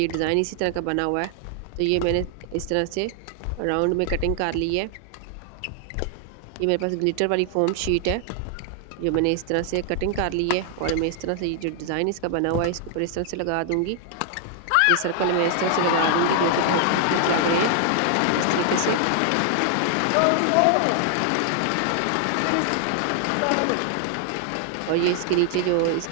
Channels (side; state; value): both; different; correlation 0.00